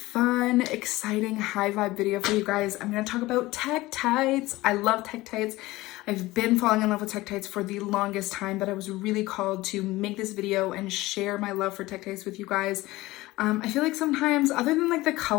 exciting, high vibe video for you guys. I'm going to talk about tektites. I love tektites. I've been falling in love with tektites for the longest time, but I was really called to make this video and share my love for tektites with you guys. I feel like sometimes, other than like the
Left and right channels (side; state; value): right; quieter; 19.0 dB